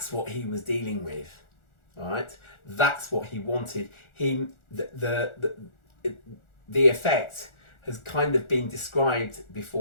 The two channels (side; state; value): right; late; 1.4 ms